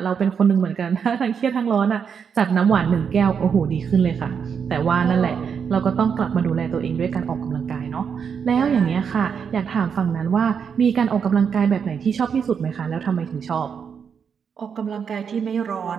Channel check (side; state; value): left; quieter; 6.8 dB